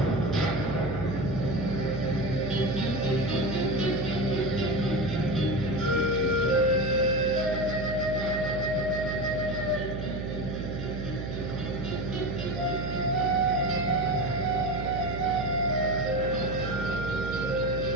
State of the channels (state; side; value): noise; right; hum, 5 dB below the sound